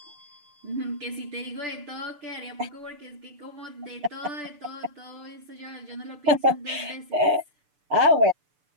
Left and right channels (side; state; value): left; late; 6.8 ms